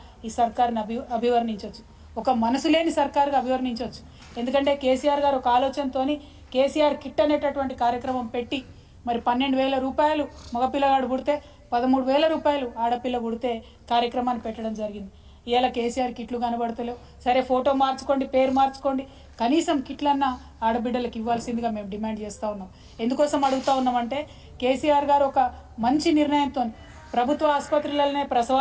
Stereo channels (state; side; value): identical; both; correlation 1.00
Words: ఈ సర్కారుని అభివర్ణించవచ్చు, ఒక మనసు లేని సర్కారుగా అభివర్ణించవచ్చు. ఎందుకంటే కేసీఆర్ గారు ఒక ఆలోచనతోని కేసీఆర్ కిట్ అనేటటువంటి కార్యక్రమం పెట్టి మరి 12,000 రూపాయలు మగపిల్లగాడు పుడితే 13,000 రూపాయలు ఆడపిల్ల పుడితే కార్యక్రమాన్ని పెట్టడం జరిగింది. ఇవాళ కేసీఆర్ కిట్లు కనబడతలేవు. సరే ఫోటో మార్చుకోండి, పేరు మార్చుకోండి, కనీసం కిట్లన్నా ఆడబిడ్డలకు ఇవ్వాల్సిందిగా మేము డిమాండ్ చేస్తూ ఉన్నాం. ఎందుకోసం అడుగుతూ ఉన్నామంటే కేసీఆర్ గారు ఒక మంచి నిర్ణయంతో ప్రభుత్వ ఆసుపత్రులలోనే